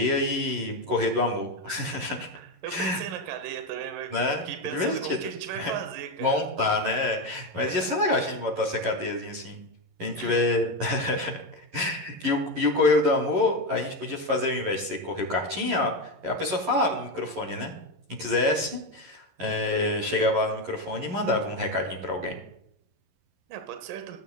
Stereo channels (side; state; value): left; late; 11 ms